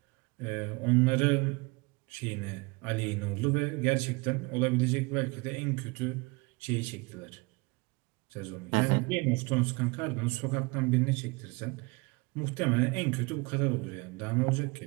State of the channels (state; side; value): quieter; left; 27.0 dB